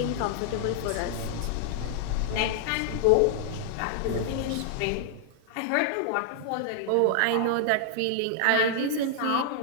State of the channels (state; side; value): different; both; correlation -0.01